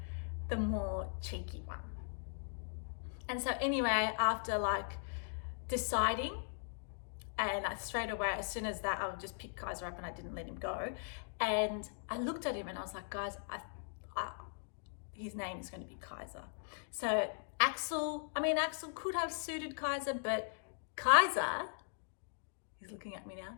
the more cheeky one. And so anyway, after like deciding, and straight away, as soon as that, I would just pick Kaiser up, and I didn't let him go. And I looked at him and I was like, guys, his name is going to be Kaiser. So Axel could have suited Kaiser, but Kaiser, he's looking at me now.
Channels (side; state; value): right; silent; digital silence